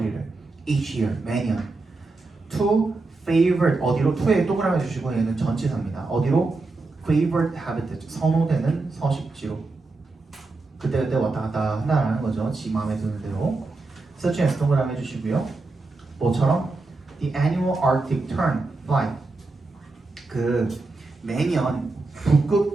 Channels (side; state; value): left; quieter; 3.5 dB